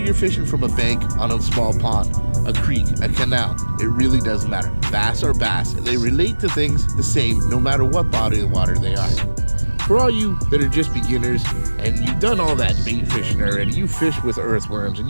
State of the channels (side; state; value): both; inverted; correlation -1.00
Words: you're fishing from a bank on a small pond, a creek, a canal, it really doesn't matter. Bass are bass, and they relate to things the same no matter what body of water they are. For all you that are just beginners, and you've done all that bait fishing already, you fish with earthworms, and